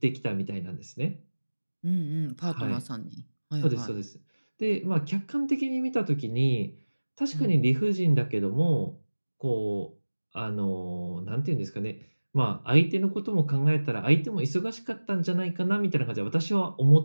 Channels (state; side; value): inverted; both; correlation -1.00